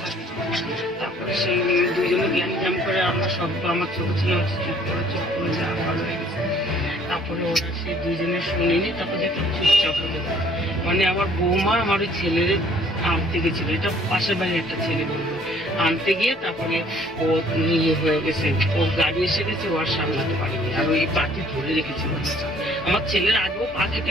থাকে। তারপরে সেই দুইজনে জ্ঞান জ্ঞান করে আমরা সব, আমার ছোট ছেলে চুপ করে যা ভালো হয়ে গেছে। তারপরে ওরা সেই দুইজনে শুনিনি, তারপরে একটা চুপচাপ হয়ে গেছে। মানে আমার বৌমা আমার ওই ছেলের আনতে গেছিল, এটা পাশের বাড়ির একটা ছেলে বলবো, আনতে গিয়ে তারপরে ও ইয়ে হয়ে গেছে, ওর গাড়ি এসে গেছে, ও আর সামলাতে পারেনি, আর ওই পাটি ধরে রেখেছিল। আমার ছেলের আগেও পা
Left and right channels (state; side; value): normal; both; correlation 0.58